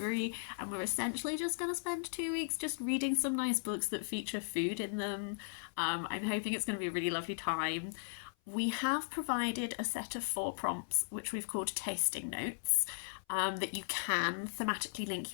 and we're essentially just going to spend 2 weeks just reading some nice books that feature food in them. I'm hoping it's going to be a really lovely time. We have provided a set of 4 prompts, which we've called tasting notes, that you can thematically link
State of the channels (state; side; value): silent; right; 53 dB below the other